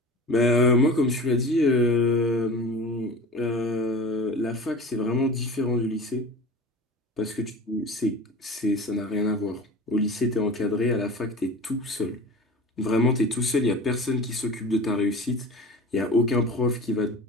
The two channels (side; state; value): both; normal; correlation 0.36